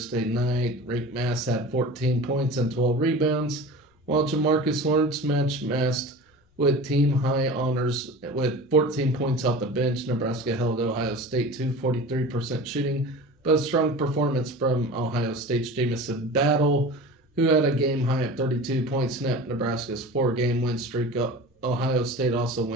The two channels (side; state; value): both; normal; correlation 0.35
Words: night. Rick Mass had 14 points and 12 rebounds, while Jamarcus Lawrence matched with team-high honors with 14 points off the bench. Nebraska held Ohio State to 43% shooting, but a strong performance from Ohio State's Jamison Battle, who had a game-high of 32 points, snapped Nebraska's 4-game win streak up. Ohio State also